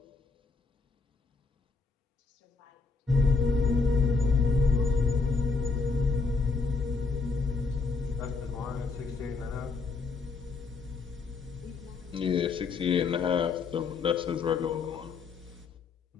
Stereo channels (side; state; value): right; quieter; 4.4 dB